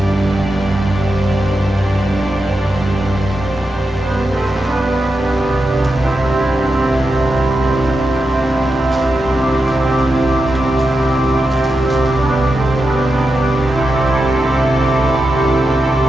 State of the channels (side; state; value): both; normal; correlation 0.88